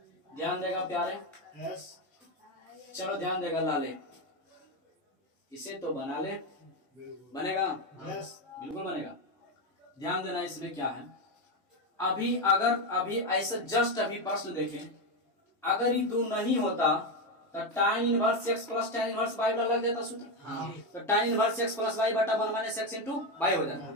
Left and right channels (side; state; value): both; normal; correlation 0.11